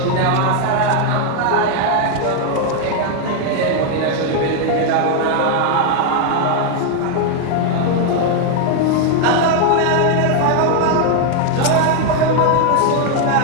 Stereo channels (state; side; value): different; both; correlation 0.00